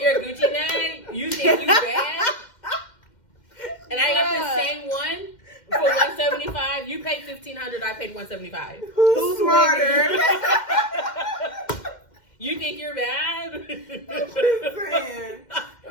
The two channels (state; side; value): late; right; 2.1 ms